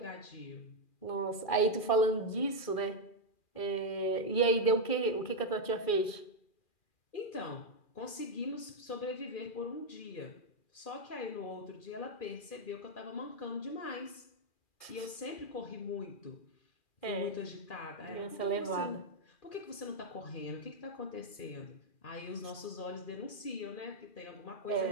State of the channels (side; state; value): right; late; 2.4 ms